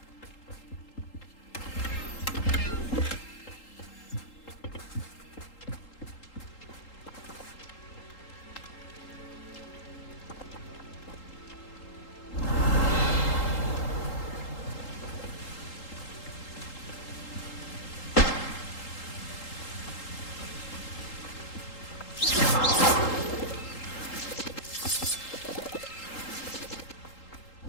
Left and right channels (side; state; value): right; late; 3.8 ms